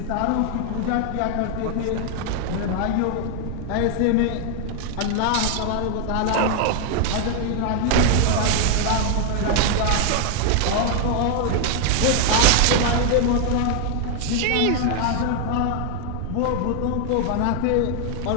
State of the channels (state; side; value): different; both; correlation 0.00